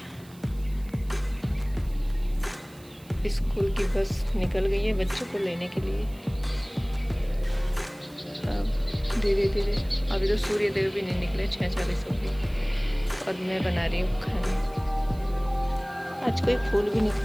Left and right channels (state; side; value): noise; right; hiss, 24 dB below the sound